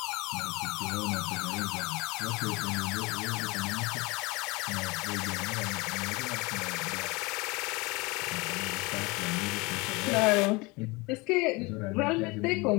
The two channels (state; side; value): quieter; right; 25.3 dB